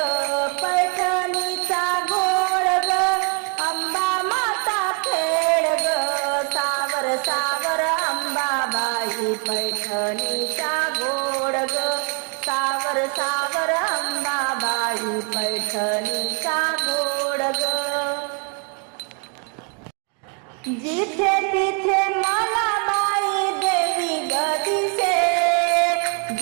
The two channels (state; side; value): quieter; left; 38.9 dB